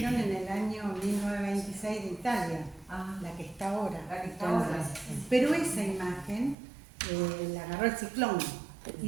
en el año 1926 de Italia, Ah, la que está ahora. la que está ahora. Pero esa imagen la agarró el ciclón y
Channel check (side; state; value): left; drops out; at 6.6 s